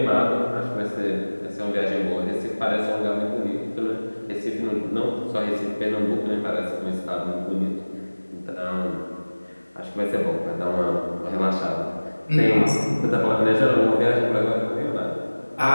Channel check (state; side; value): inverted; both; correlation -1.00